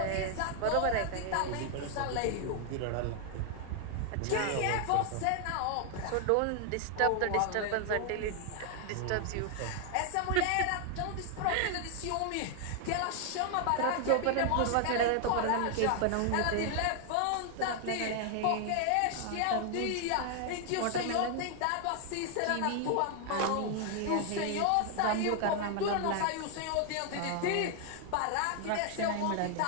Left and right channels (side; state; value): both; different; correlation 0.00